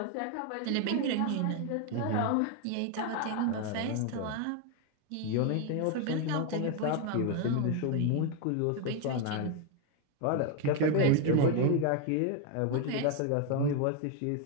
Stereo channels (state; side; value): different; both; correlation 0.01